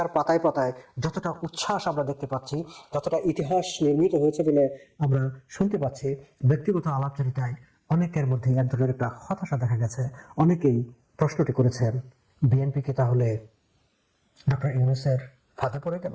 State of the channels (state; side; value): identical; both; correlation 1.00